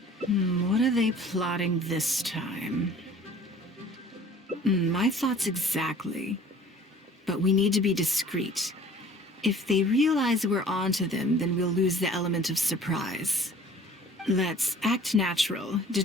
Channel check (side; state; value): both; normal; correlation 0.49